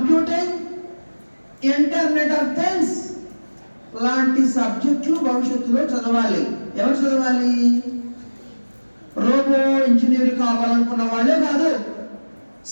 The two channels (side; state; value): both; inverted; correlation -1.00